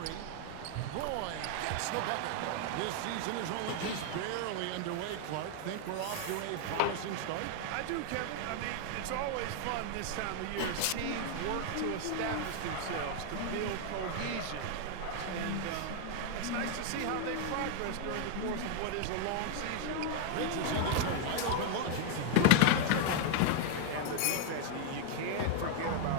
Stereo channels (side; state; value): both; different; correlation 0.00